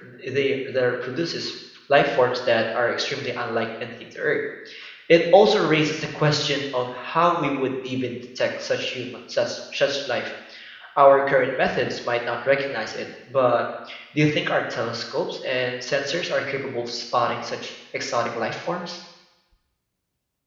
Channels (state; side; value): identical; both; correlation 1.00